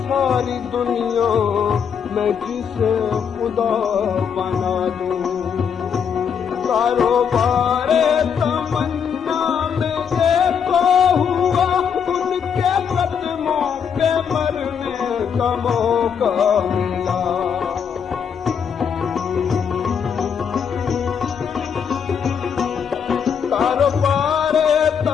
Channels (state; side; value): quieter; right; 7.2 dB